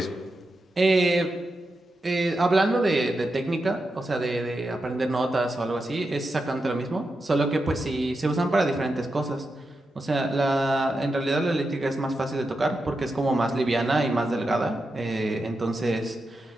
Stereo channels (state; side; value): normal; both; correlation 0.88